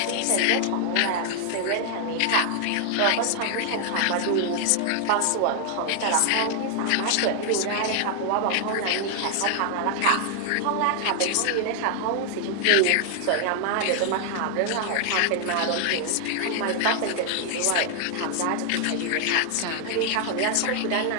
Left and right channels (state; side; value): different; both; correlation 0.00